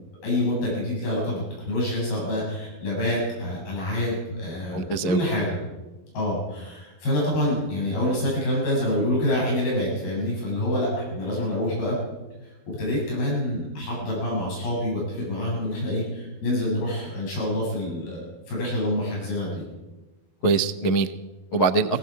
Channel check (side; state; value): right; late; 11 ms